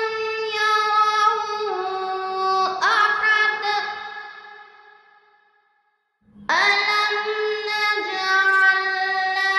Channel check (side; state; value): both; identical; correlation 1.00